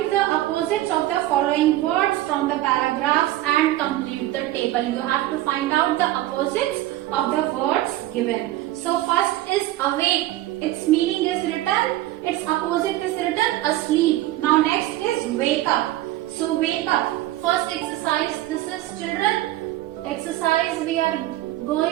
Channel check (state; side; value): quieter; left; 15.5 dB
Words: the opposites of the following words from the paragraphs and complete the table. You have to find out the opposites of the words given. So first is awake. Its meaning is written. Its opposite is written asleep. Now next is wake up. So wake up. First exercise. This is children exercise we are